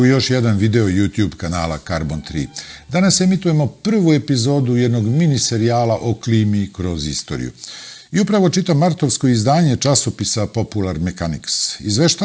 još jedan video YouTube kanala Carbon 3. Danas emitujemo prvu epizodu jednog mini serijala o klimi kroz istoriju. I upravo čitam martovsko izdanje časopisa Popular Mechanics.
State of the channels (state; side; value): identical; both; correlation 1.00